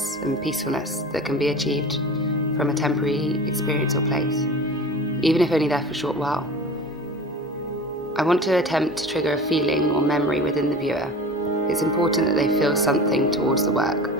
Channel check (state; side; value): normal; both; correlation 0.36